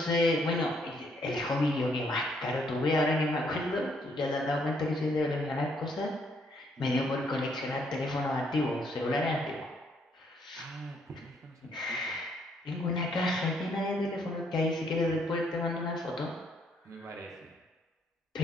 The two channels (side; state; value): both; normal; correlation 0.70